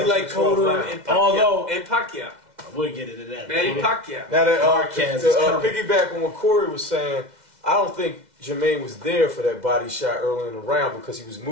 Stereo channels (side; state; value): left; late; 2.0 ms